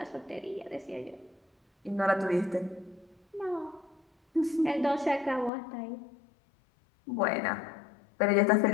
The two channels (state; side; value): drops out; right; at 5.5 s